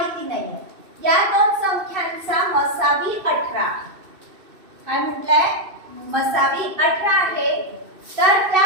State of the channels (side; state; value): left; late; 2.6 ms